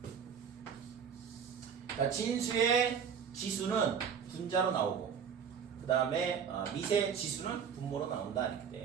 자, 진수의 지수는 분자로 나오고 그 다음에 미세 지수는 분모로 나온다 이렇게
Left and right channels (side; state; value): left; quieter; 7.2 dB